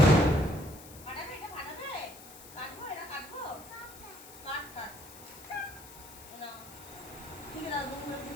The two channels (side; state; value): left; noise; hiss, 17 dB below the sound